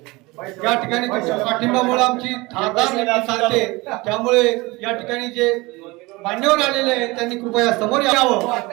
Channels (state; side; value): quieter; left; 23.0 dB